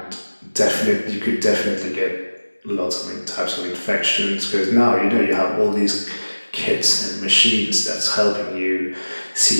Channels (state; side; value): inverted; both; correlation -1.00